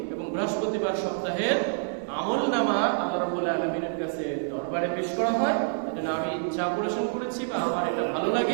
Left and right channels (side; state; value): left; silent; digital silence